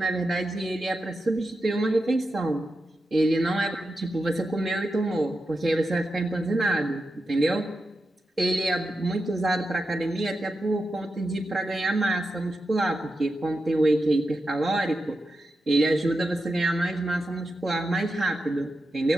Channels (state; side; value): normal; both; correlation 0.89